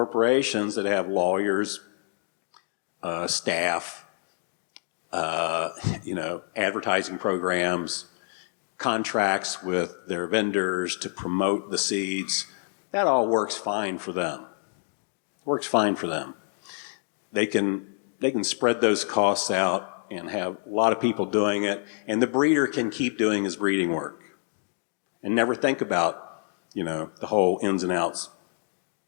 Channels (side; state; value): right; silent; 60 dB below the other